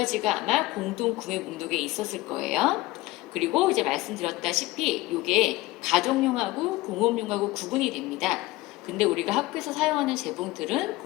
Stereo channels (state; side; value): quieter; right; 19.0 dB